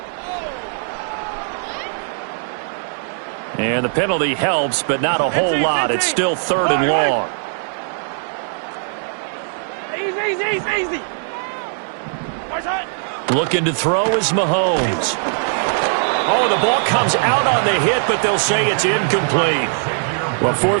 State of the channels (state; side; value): silent; left; 63 dB below the other